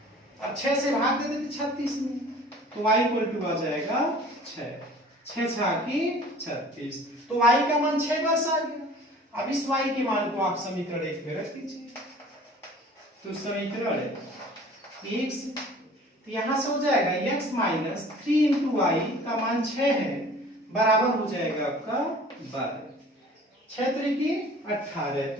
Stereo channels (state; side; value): normal; both; correlation 0.47